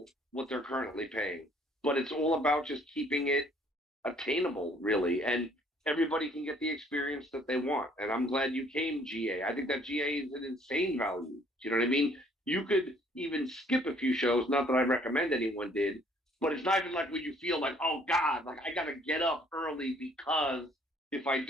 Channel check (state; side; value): normal; both; correlation 0.61